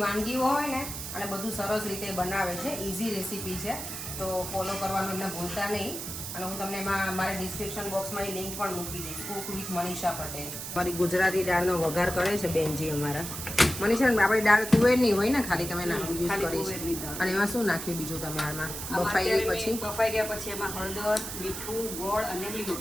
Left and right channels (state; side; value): noise; right; hiss, 7 dB below the sound